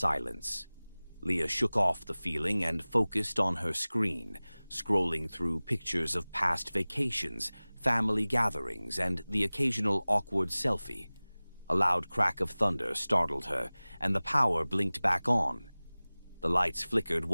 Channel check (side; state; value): both; inverted; correlation -0.99